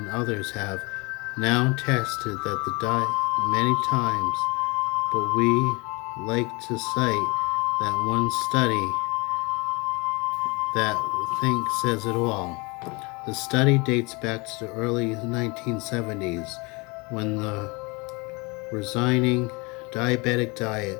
others have now tested that the diet many times, but we like to cite that one study that I think says it all. The study dates back to the early 1970s when the resigning diabetic diet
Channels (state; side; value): quieter; right; 27.3 dB